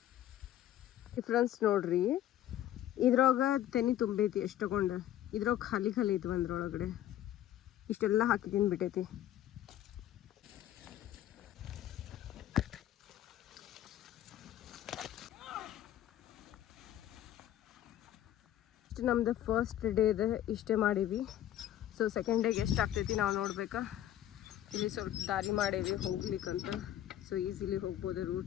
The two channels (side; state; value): right; quieter; 12.3 dB